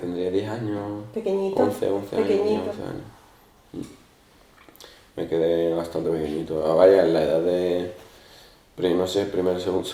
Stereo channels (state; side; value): identical; both; correlation 1.00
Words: 10 años. Pequeñito. 11 años. Pequeñito. 11 años. Me quedé bastante pequeñito. Vaya, en la edad de... no sé,